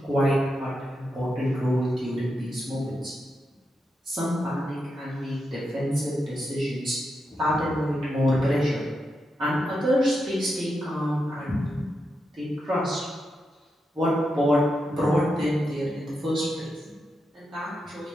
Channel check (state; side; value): normal; both; correlation 0.86